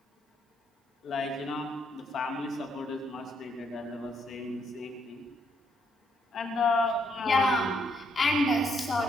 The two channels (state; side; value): normal; both; correlation 0.73